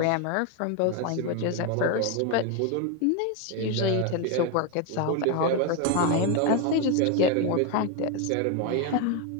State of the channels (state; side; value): different; both; correlation 0.02